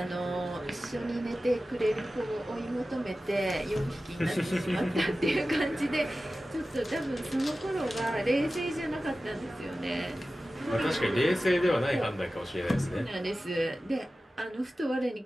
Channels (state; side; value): normal; both; correlation 0.95